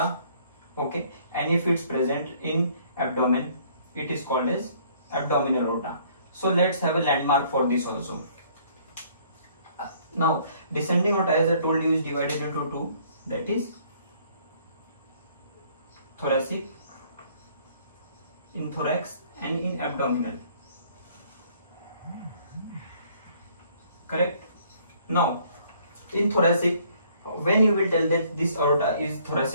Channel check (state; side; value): inverted; both; correlation -0.60